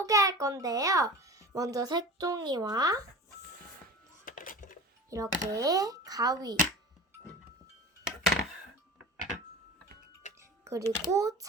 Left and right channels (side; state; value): both; normal; correlation 0.36